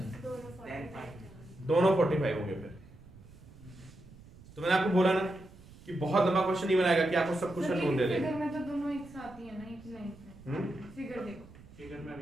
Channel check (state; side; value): noise; right; rumble, 21 dB below the sound